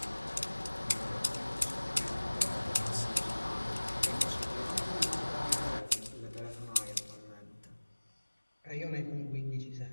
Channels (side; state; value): both; inverted; correlation -1.00